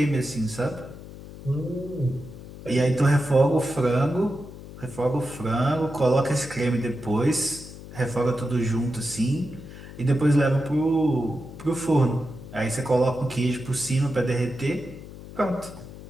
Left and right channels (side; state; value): left; noise; hum, 15 dB below the sound